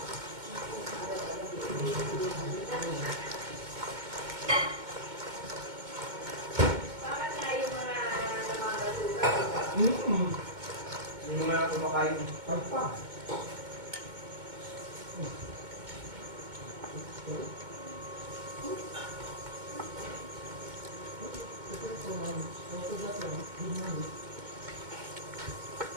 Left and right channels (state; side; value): late; left; 2.2 ms